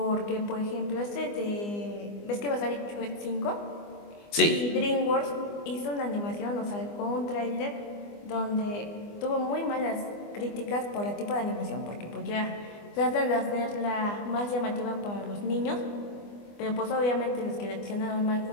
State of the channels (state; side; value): late; right; 24 ms